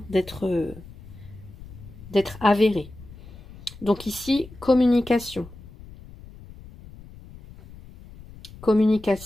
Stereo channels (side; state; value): left; noise; rumble, 18 dB below the sound